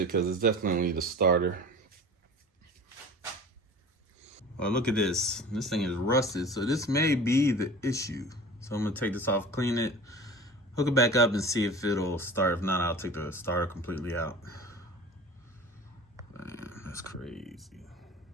because it's definitely the starter. Well, look at this. This thing is rusted, so this may be the issue. So I'm gonna take this off, clean it, hook it back up, and see if it'll start. If not, I'll take the starter completely out. Man, that's crazy.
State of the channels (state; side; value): normal; both; correlation 0.39